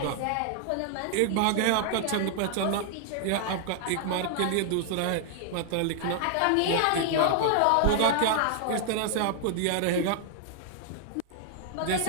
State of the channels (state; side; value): different; both; correlation 0.00